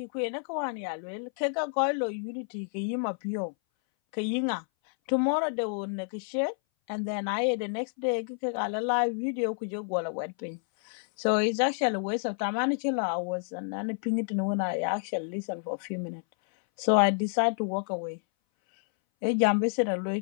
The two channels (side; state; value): right; silent; 58 dB below the other